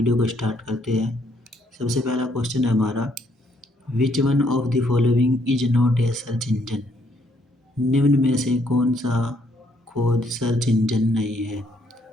को स्टार्ट करते हैं। सबसे पहला क्वेश्चन है हमारा, which one of the following is not A search engine? निम्न में से कौन सा खोज सर्च इंजन नहीं है?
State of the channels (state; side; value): normal; both; correlation 0.69